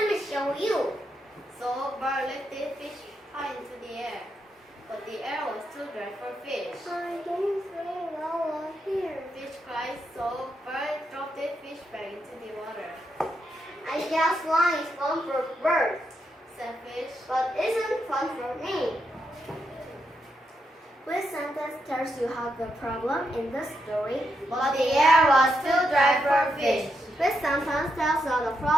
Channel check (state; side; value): normal; both; correlation 0.82